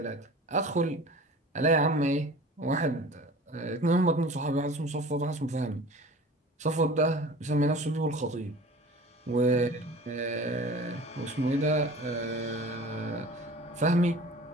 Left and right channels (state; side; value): normal; both; correlation 0.41